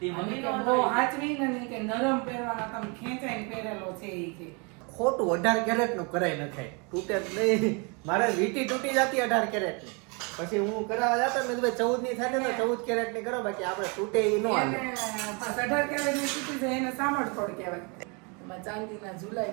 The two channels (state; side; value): quieter; left; 32.3 dB